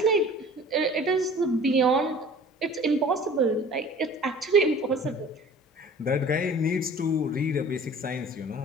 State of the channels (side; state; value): both; normal; correlation 0.46